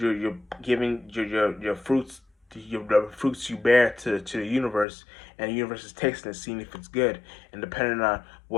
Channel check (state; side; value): drops out; right; at 4.9 s